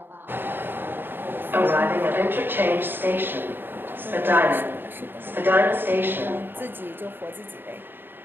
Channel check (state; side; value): late; left; 0.097 ms